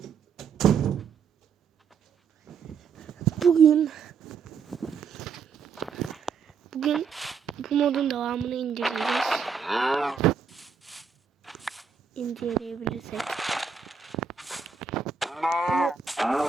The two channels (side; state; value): left; quieter; 6.0 dB